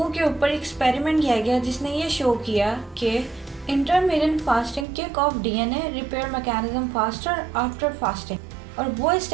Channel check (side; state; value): left; drops out; at 4.9 s